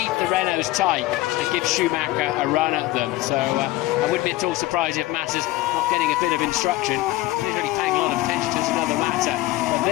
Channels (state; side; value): quieter; right; 17.5 dB